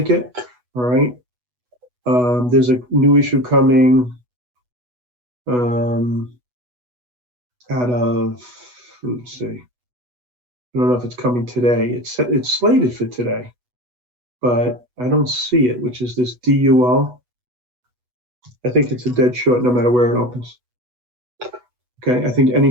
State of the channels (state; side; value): late; left; 8.1 ms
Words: All right. There's a new issue coming out of, let's see. I don't know if it's coming today. It's slated for today, but I don't see it, which is this DUL. I think it's a dead short no matter where it opens. Okay, I think any